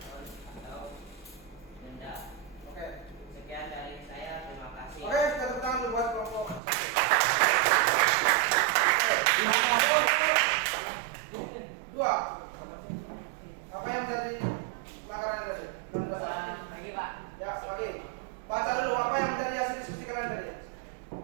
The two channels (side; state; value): left; drops out; at 6.6 s